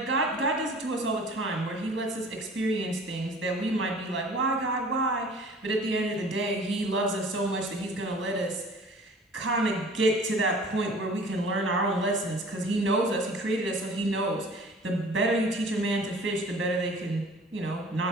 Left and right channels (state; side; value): normal; both; correlation 0.47